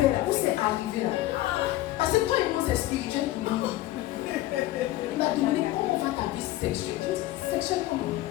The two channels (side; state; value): right; quieter; 16.0 dB